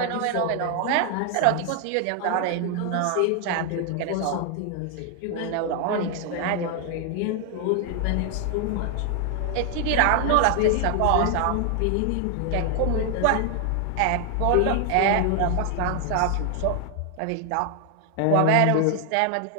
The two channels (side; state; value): both; different; correlation 0.00